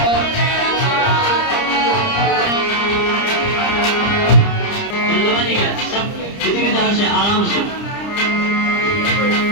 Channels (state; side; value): late; right; 30 ms